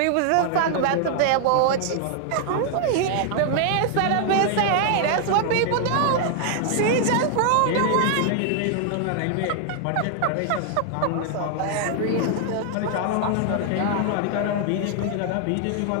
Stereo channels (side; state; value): both; different; correlation 0.00